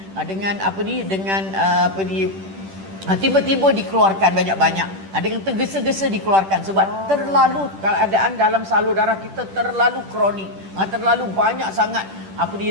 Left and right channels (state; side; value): late; left; 10 ms